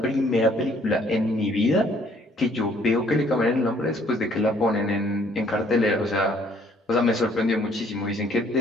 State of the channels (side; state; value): both; normal; correlation 0.62